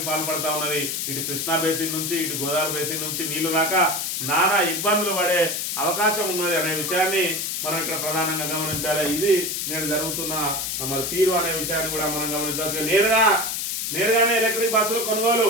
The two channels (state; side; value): noise; left; hiss, 2 dB below the sound